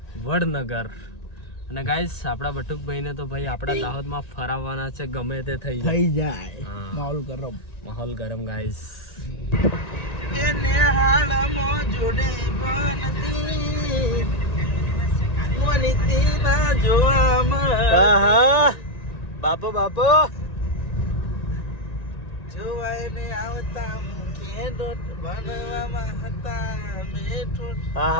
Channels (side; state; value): right; late; 1.9 ms